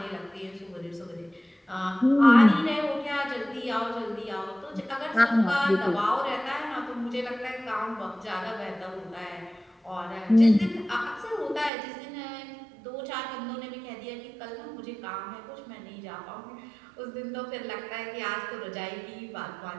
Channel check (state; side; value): drops out; left; at 11.7 s